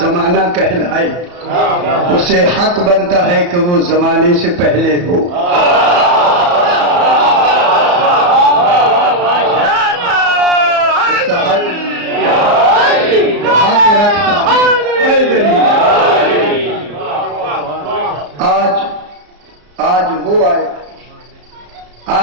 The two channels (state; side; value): late; left; 34 ms